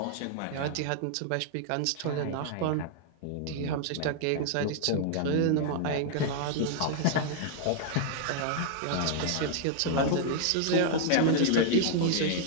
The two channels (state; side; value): different; both; correlation -0.01